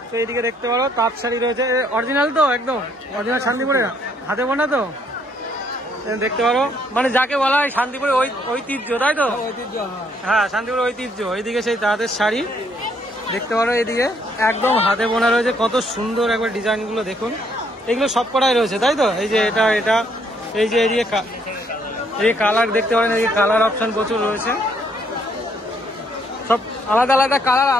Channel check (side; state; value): both; normal; correlation 0.69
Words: তো এইদিকে দেখতে পারো তাঁত শাড়ি রয়েছে। অরিজিনাল তো? একদম অরিজিনাল শান্তিপুরের হাতে বোনা তো? দেখতে পারো, মানে যাকে বলা হয় শান্তিপুরের ঐতিহ্য, তাই তো? ঐতিহ্য, হ্যাঁ, শান্তিপুরের ঐতিহ্য। এইদিকে সেই তাঁতের শাড়ি দেখতে পারো, এদিকে একদম হাতে বোনা রয়েছে, কত সুন্দর একবার ডিজাইন গুলো দেখুন। এগুলো সব কটাই রয়েছে, তাই তো? এই যে এটা এই যে এদিকে এই কালার দেখতে পারেন, এই কালার অপশন প্রচুর রয়েছে, সব আলাদা আলাদা কালার,